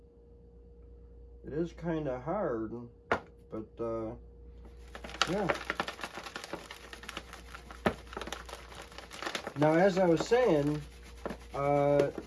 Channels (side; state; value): both; identical; correlation 1.00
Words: It is kind of hard, but yeah. Now, as I was saying,